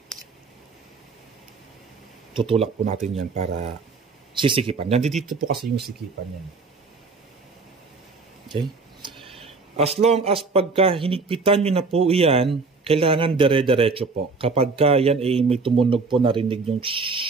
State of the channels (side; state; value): left; quieter; 4.2 dB